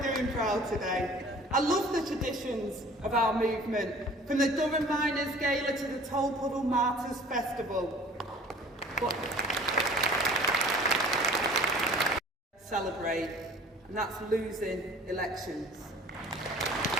doing proud today. I love the traditions of our movement, from the Durham Miners' Gala to the Tolpuddle Martyrs Festival. But celebrate, and that's losing elections.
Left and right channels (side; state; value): both; normal; correlation 0.48